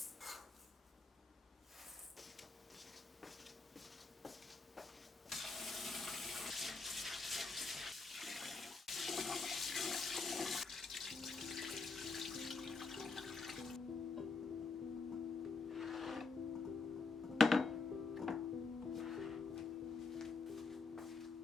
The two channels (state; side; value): quieter; right; 4.1 dB